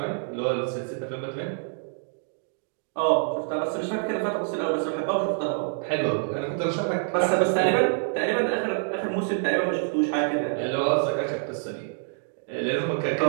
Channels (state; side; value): silent; left; digital silence